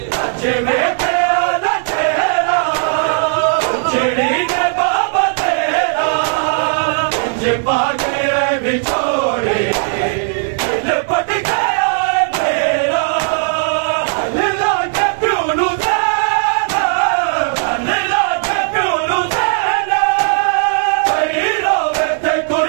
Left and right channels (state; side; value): silent; left; digital silence